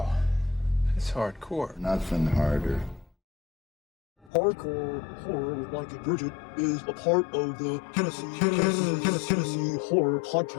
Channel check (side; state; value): right; drops out; at 4.3 s